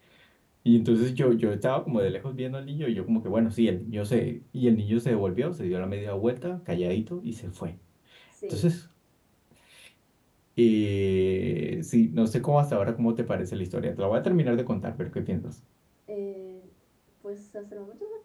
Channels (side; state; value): both; identical; correlation 1.00